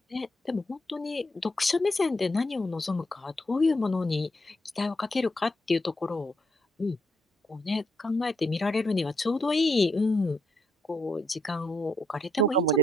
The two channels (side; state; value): both; normal; correlation 0.75